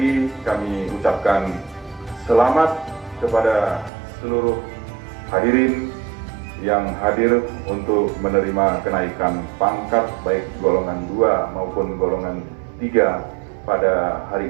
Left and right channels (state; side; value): drops out; left; at 3.9 s